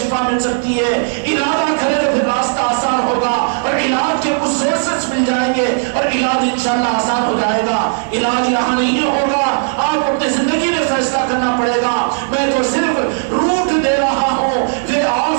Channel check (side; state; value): left; silent; 69 dB below the other